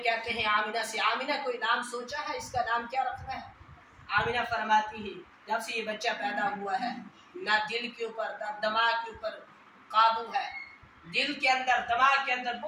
کہتے ہیں آمنہ سے، آمنہ کوئی نام سوچا ہے اس کا نام کیا رکھنا ہے؟ آمنہ فرماتی ہے جب سے یہ بچہ پیدا ہوا ہے نہ دل کے اوپر نہ دماغ کے اوپر قابو ہے، دل کے اندر دماغ کے اندر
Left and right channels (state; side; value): identical; both; correlation 1.00